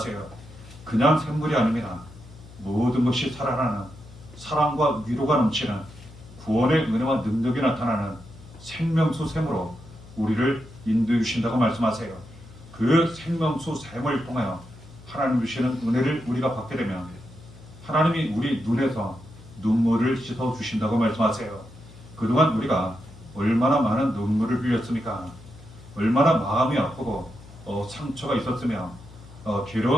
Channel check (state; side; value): noise; left; hum, 19 dB below the sound